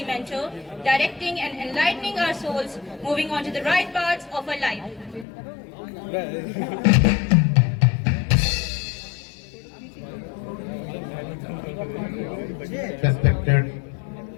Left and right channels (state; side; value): drops out; right; at 5.2 s